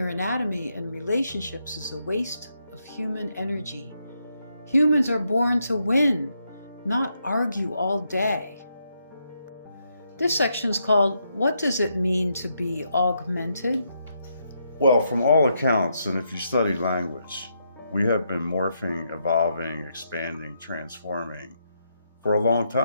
anatomy and relationships is a waste of human energy. Humans are born to win, not argue all day. This section is called, What Does It Mean to Be Augmented? Well, from all accounts, and if you study language, we have been morphing, evolving, expanding, transforming for a long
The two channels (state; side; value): inverted; both; correlation -0.79